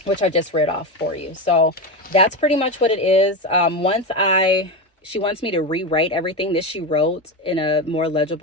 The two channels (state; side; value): normal; both; correlation 0.17